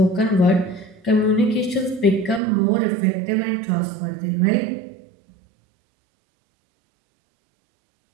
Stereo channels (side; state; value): left; drops out; at 2.4 s